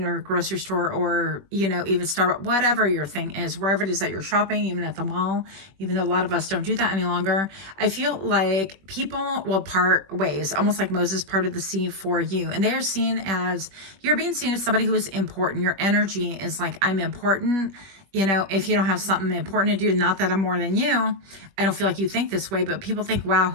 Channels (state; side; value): late; left; 21 ms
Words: or grocery store or, you know, even Starbucks, whatever your thing is, wherever it is that you're shopping, even at the mall, even though a lot of us don't do that any longer. I feel like people will part ways, almost like Moses parted the sea for you. And they are seen as, you're being seen as somebody who is important. Your energy is like, I'm important. You know, if you don't have something important to do, not that I'm more than you, I don't feel like you think this way, but people think, wow,